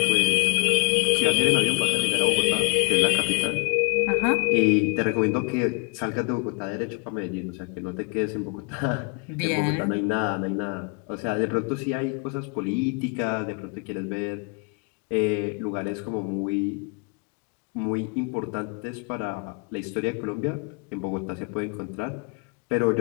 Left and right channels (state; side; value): quieter; right; 31.4 dB